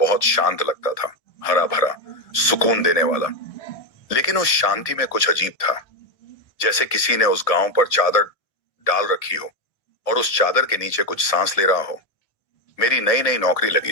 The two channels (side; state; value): right; late; 1.8 ms